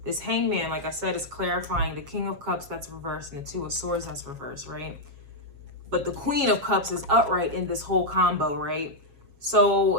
this hangman, like I said, is clarifying the King of Cups that's reversed and the Two of Swords that's reversed, right? But the Queen of Cups is upright in this whole combo, right? So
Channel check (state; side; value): late; left; 7.3 ms